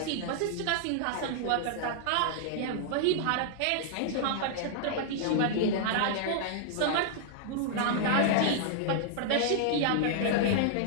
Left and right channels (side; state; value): both; different; correlation -0.01